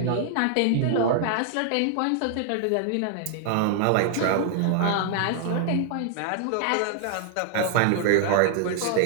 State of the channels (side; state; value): both; different; correlation 0.00